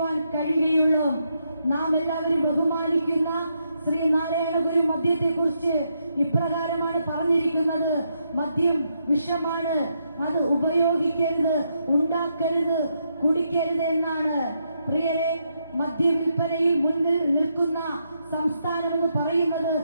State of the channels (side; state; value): both; inverted; correlation -0.80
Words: കഴിയുകയുള്ളൂ. നാം എല്ലാവരും ബഹുമാനിക്കുന്ന ശ്രീ നാരായണ ഗുരു മദ്യത്തെ കുറിച്ച് ഇപ്രകാരമാണ് പറഞ്ഞിരിക്കുന്നത്: മദ്യം വിഷമാണ്, അത് ഉപയോഗിക്കരുത്, ഉണ്ടാക്കരുത്, കുടിക്കരുത് എന്നാണ്. പ്രിയരെ, മദ്യ വിൽപ്പനയിൽ മുന്നിൽ നിൽക്കുന്ന സംസ്ഥാനം എന്ന് പറയുന്നത്